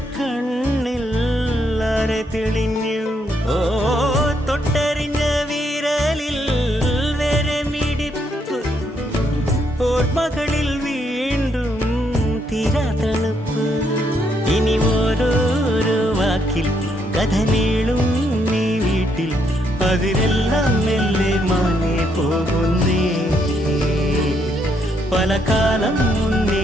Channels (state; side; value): normal; both; correlation 0.75